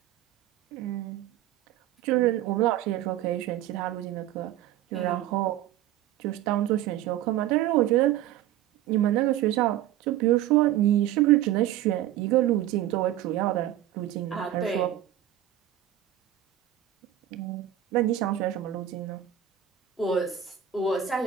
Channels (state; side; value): quieter; left; 12.1 dB